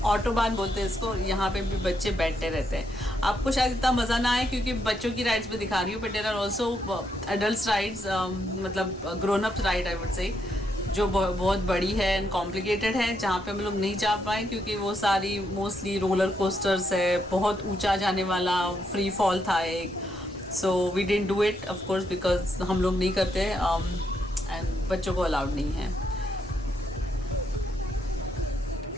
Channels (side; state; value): both; normal; correlation 0.78